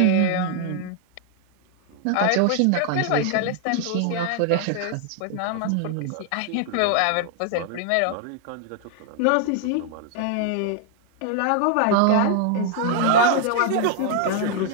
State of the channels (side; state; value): both; different; correlation 0.00